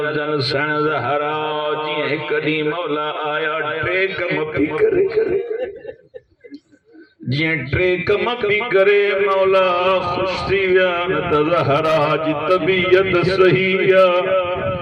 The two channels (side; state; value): both; identical; correlation 1.00